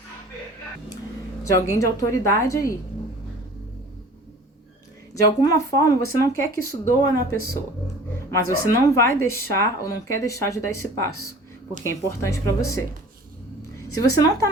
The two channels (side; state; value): both; normal; correlation 0.45